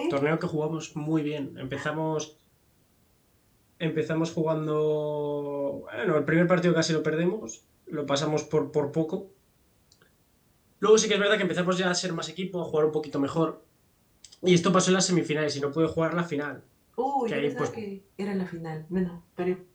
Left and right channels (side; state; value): both; identical; correlation 1.00